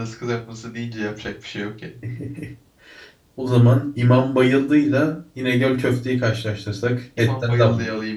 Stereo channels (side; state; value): both; identical; correlation 1.00